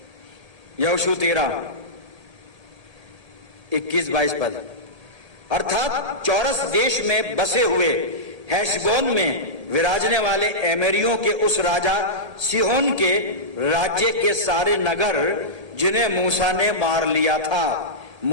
यहोशू 13 21-22 पद। अर्थात चौरस देश में बसे हुए हेशबोन में विराजने वाले एमेरियों के उस राजा सिहोन के राज्य के सारे नगर जिन्हें मूसा ने मार लिया था।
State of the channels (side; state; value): left; late; 1.8 ms